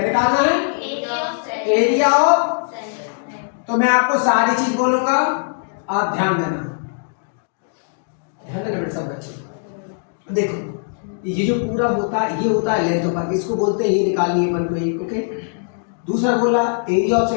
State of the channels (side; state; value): right; silent; digital silence